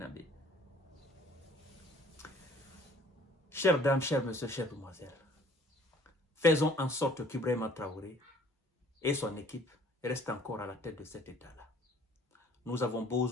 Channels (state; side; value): normal; both; correlation 0.55